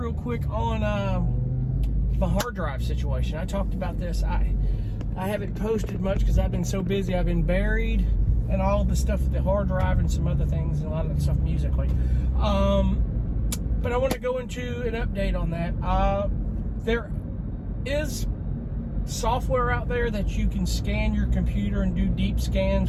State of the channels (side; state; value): both; identical; correlation 1.00